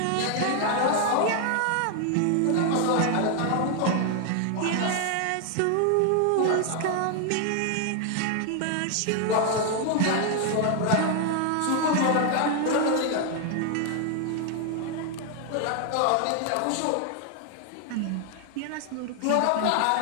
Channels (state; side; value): different; both; correlation 0.00